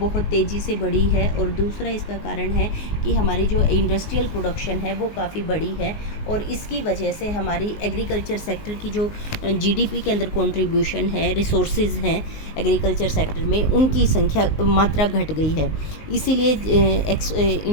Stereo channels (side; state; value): right; late; 19 ms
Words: तेज़ी से बढ़ी है और दूसरा इसका कारण है कि हमारी जो इंडस्ट्रियल प्रोडक्शन है वो काफ़ी बड़ी है और इसकी वजह से हमारी एग्रीकल्चर सेक्टर की जो जीडीपी के अंदर कंट्रीब्यूशन है, रिसोर्सेज हैं एग्रीकल्चर सेक्टर में, उनकी संख्या, मात्रा घट गई है। इसीलिए